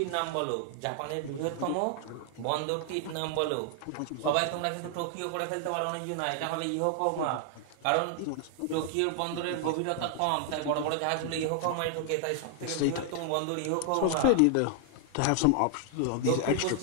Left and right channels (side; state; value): both; different; correlation 0.00